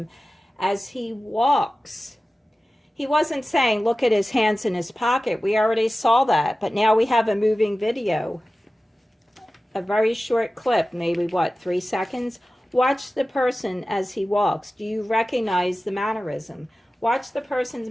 as he walks. He wasn't saying, look at his hands in his pocket. We already saw that. But now we have a moving video. A very short clip, maybe 3 seconds? Watch the person as he walks. Do you recognize the mannerism? Watch the person's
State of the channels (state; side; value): normal; both; correlation 0.96